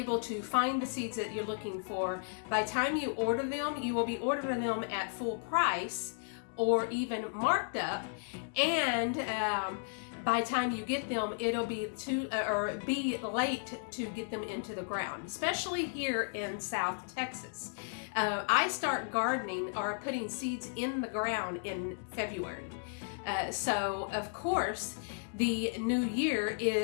to find the seeds that you're looking for, by the time you order them, you will be ordering them at full price or even marked up, and by the time you get them, it'll be be late to get them into the ground, especially here in South Texas. I start gardening or putting seeds in the ground in February. So of course, the new year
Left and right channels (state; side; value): silent; right; digital silence